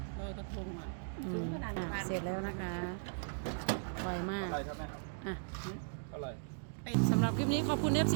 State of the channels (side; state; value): left; silent; digital silence